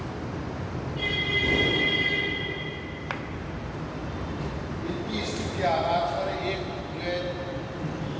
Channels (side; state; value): both; identical; correlation 1.00